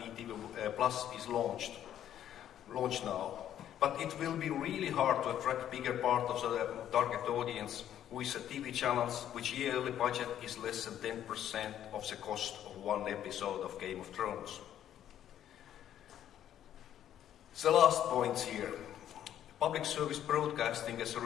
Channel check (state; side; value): quieter; right; 10.8 dB